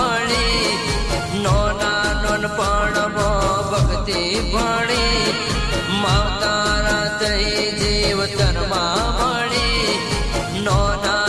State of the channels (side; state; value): both; identical; correlation 1.00